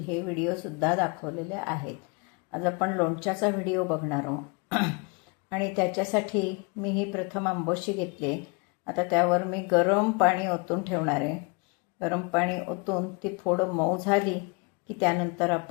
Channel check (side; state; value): right; quieter; 31.5 dB